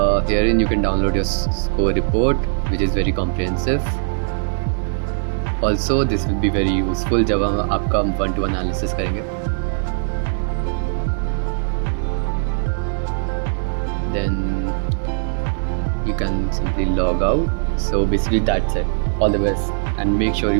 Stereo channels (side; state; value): left; silent; digital silence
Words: herein you can download your score report, which is very comprehensive. Also this will be very useful जब हम आपका 1-to-1 analysis करेंगे. Then you can simply log out. So basically that's it. All the best, and make sure